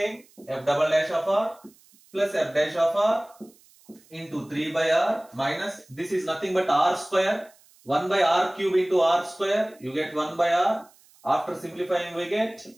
F double dash of r plus f dash of r into 3 by r minus, this is nothing but r square. 1 by r cube into r square. You get 1 by r. After simplifying we get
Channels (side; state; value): right; noise; hiss, 29 dB below the sound